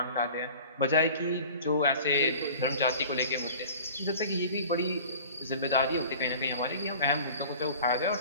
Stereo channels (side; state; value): both; inverted; correlation -0.42